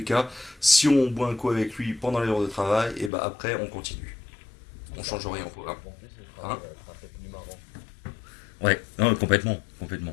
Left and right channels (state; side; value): drops out; right; at 3.1 s